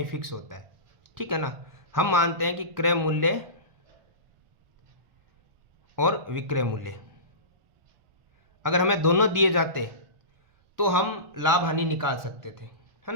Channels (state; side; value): late; left; 1.4 ms